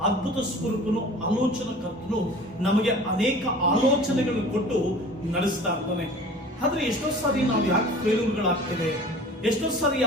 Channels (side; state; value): both; normal; correlation 0.43